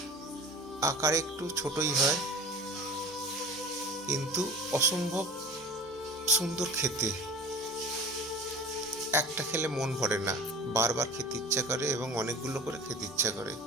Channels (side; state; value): both; normal; correlation 0.39